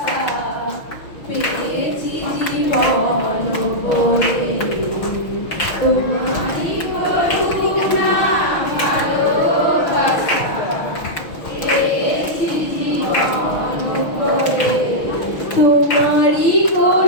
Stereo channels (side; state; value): right; late; 6.2 ms